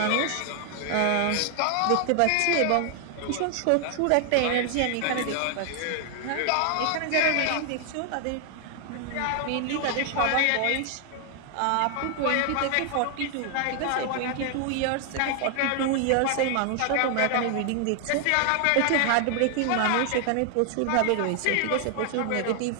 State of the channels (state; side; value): different; both; correlation 0.00